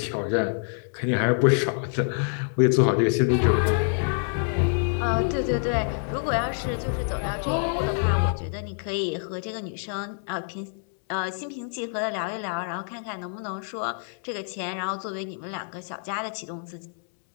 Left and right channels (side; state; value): right; silent; 61 dB below the other